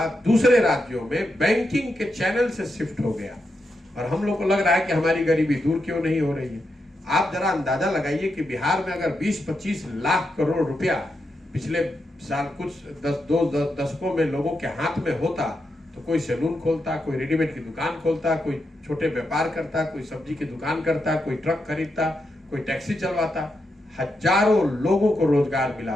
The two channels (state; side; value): normal; both; correlation 0.85